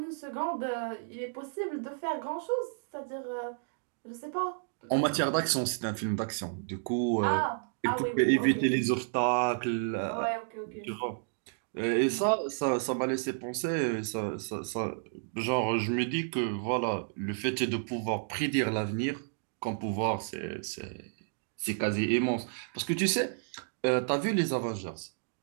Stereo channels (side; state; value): left; silent; digital silence